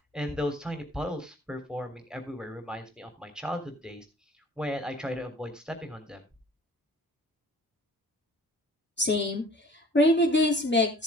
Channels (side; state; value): both; normal; correlation 0.50